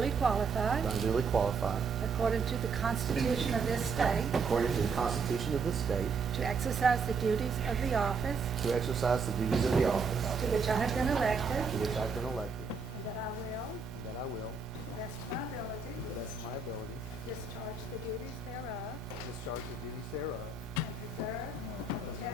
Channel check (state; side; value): quieter; left; 4.8 dB